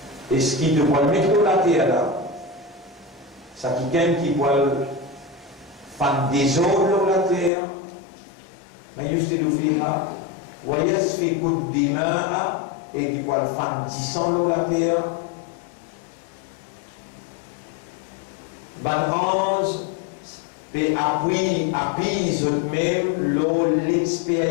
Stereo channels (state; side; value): drops out; right; at 7.5 s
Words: Est-ce qu'il te voit mettre la terre là? Ça quelqu'un qui voit faire des eaux dans la terre, من يفسد فيها ويسفك الدماء, et qui voit faire du sang dans la terre. Ben ange appuie même